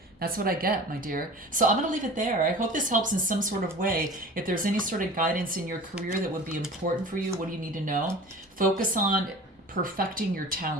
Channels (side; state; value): both; normal; correlation 0.39